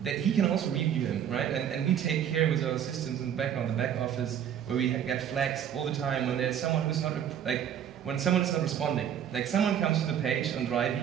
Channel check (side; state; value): left; quieter; 9.3 dB